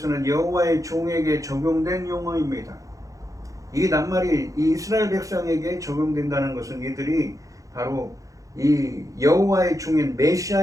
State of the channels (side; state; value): left; late; 0.16 ms